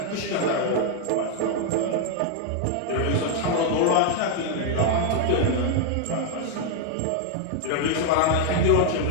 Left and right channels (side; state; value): both; different; correlation 0.00